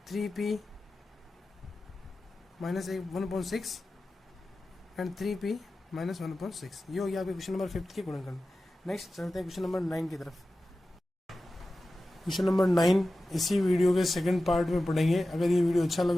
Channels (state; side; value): normal; both; correlation 0.94